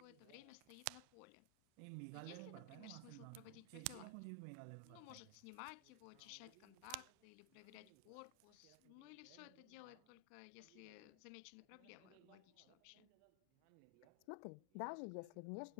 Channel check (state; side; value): different; both; correlation 0.00